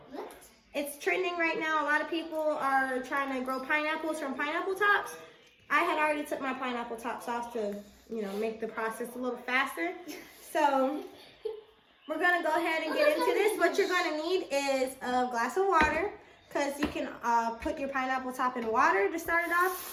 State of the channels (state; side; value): identical; both; correlation 1.00